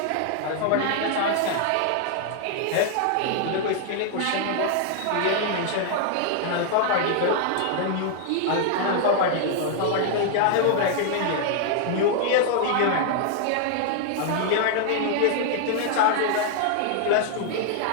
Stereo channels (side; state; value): both; different; correlation 0.00